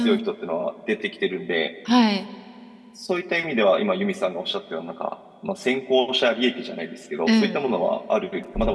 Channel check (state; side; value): identical; both; correlation 1.00